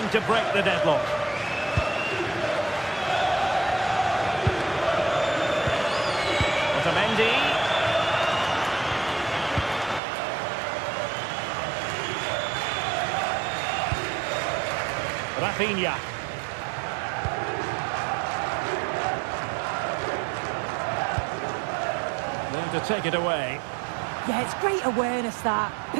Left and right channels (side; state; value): left; drops out; at 10.0 s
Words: to break the deadlock. Otamendi. Rafinha. To take it away. Yeah, it's great awareness, that.